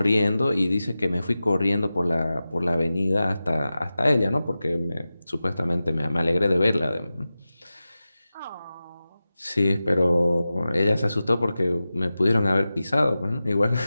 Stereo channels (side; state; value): both; inverted; correlation -0.95